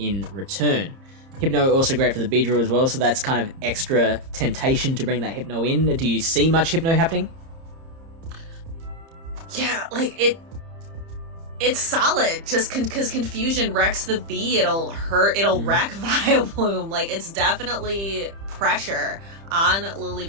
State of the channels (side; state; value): left; late; 30 ms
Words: return. Hypno also great for the Beedrill as well, so that's kind of extra temptation to bring that Hypno in. Do you see much Hypno happening? Yeah, like it's solid, just because Confusion wrecks the Bee, it'll wreck Vileplume. Like, it's definitely pressure on Lily